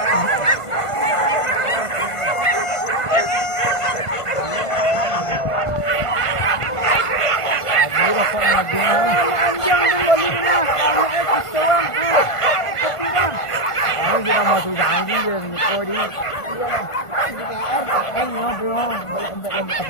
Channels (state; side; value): late; right; 1.5 ms